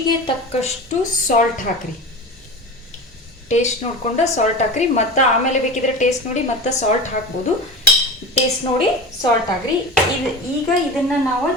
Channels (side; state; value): both; normal; correlation 0.30